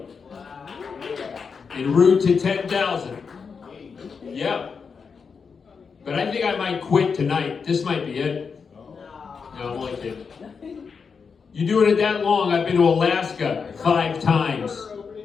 En route to 10,000. Yeah. But I think I might quit tonight. This might be it. No, I'm only kidding. You doing it that long? I've been to Alaska 5 times.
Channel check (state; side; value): quieter; right; 5.6 dB